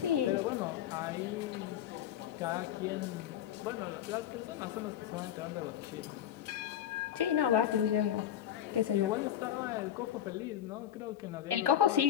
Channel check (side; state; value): right; quieter; 10.6 dB